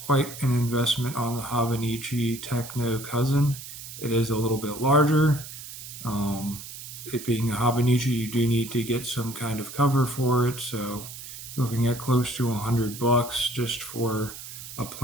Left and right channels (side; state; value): right; noise; hiss, 12 dB below the sound